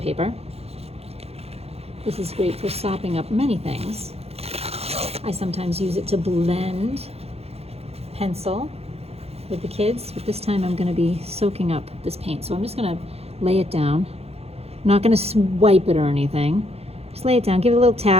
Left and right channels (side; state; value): left; late; 0.29 ms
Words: This is great for sopping up many things. I sometimes use it to blend pencil with the kids, but this time I'm going to be soaking up this paint. So I'm just going to lay it down. I'm not going to swipe it or anything. Just lay it down, give it a little